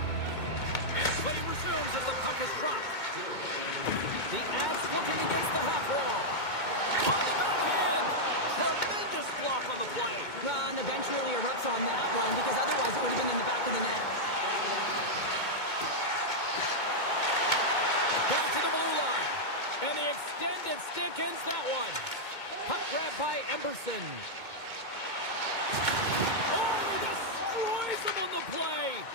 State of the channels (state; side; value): late; right; 2.2 ms